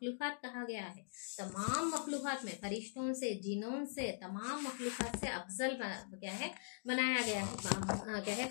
कहा गया है। तमाम मखलूकात में फरिश्तों से, जिनों से, तमाम मखलूकात से अफजल क्या है बनाया गया है, क्या है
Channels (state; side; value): silent; right; digital silence